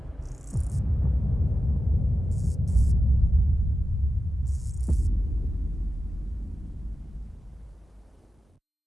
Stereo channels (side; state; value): both; normal; correlation 0.92